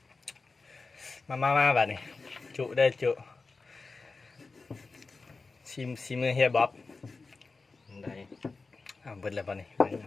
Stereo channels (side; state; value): right; quieter; 4.0 dB